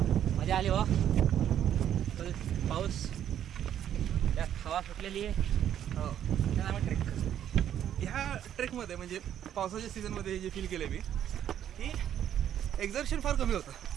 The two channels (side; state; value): left; quieter; 10.3 dB